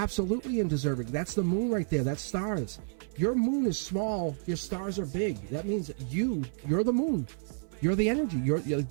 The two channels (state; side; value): silent; left; 56 dB below the other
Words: undeserving. That's the moon right there. That's stars. Your moon is small. Your stars are big. That means you're the moon. You're the energy.